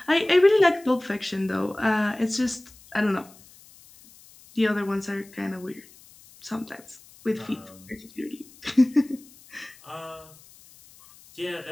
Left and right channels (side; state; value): left; noise; hiss, 24 dB below the sound